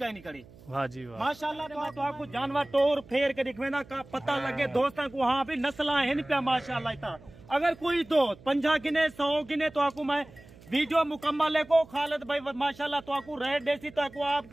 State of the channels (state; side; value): noise; right; hum, 22 dB below the sound